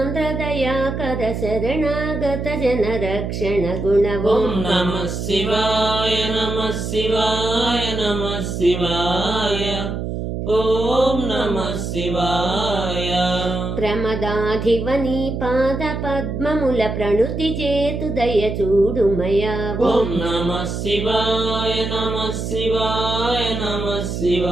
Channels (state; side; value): noise; right; hum, 4 dB below the sound